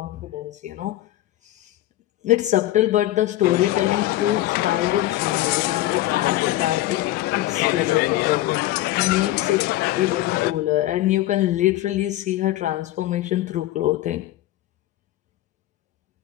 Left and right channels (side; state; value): right; quieter; 15.5 dB